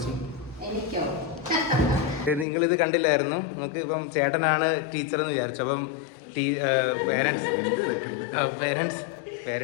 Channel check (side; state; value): right; drops out; at 2.5 s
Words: നിങ്ങളിത് കണ്ടില്ലായിരുന്നു. നമുക്ക് ഇപ്പം ചേട്ടനാണ് ടീച്ചർ എന്ന് വിചാരിച്ചു. അപ്പം